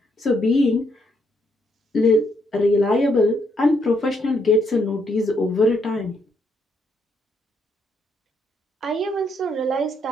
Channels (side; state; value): both; normal; correlation 0.74